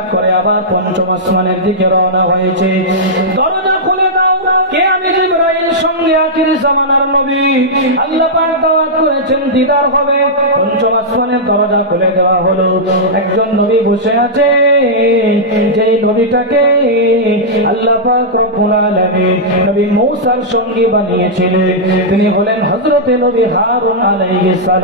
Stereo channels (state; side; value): normal; both; correlation -0.10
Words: করে আবার পঞ্চম আসমানের দিকে রওনা হয়েছে। দরজা খুলে দাও, কে? আমি জিবরাইল, সঙ্গে আখির জামানার নবী। আল্লাহ পাক দাওয়াত করেছেন, দিদার হবে। পঞ্চম আসমানের দরজা খুলে দেওয়া হলো। একজন নবী বসে আছে, যেই নবীটাকে আল্লাহ পাক রব্বুল আলামিন নবী মূসার সঙ্গী বানিয়েছিলেন, তিনি হলেন হযরতে নবী হারুন আলাইহিস